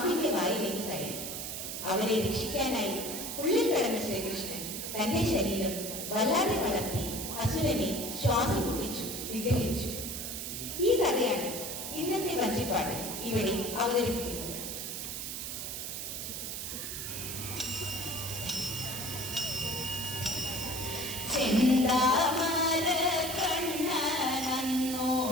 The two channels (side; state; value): right; noise; hiss, 5 dB below the sound